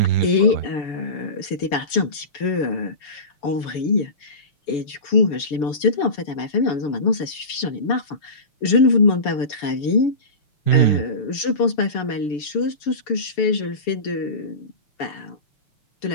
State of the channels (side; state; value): right; late; 6.9 ms